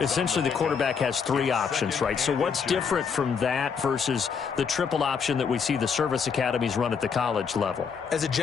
essentially the quarterback has 3 options, right? So what's different from that versus the triple option that we see the service academies run at the college level? As a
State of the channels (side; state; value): right; quieter; 6.2 dB